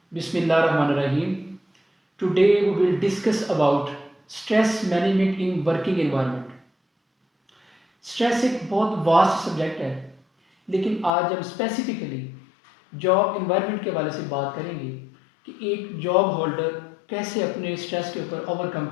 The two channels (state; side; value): drops out; right; at 11.1 s